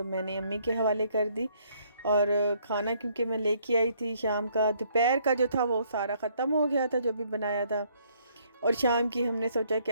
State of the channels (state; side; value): inverted; both; correlation -0.66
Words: मैंने अम्मी के हवाले कर दी। और खाना क्योंकि मैं लेके आई थी शाम का, दोपहर का जो था वो सारा ख़त्म हो गया था जो भी बनाया था, और शाम की हमने सोचा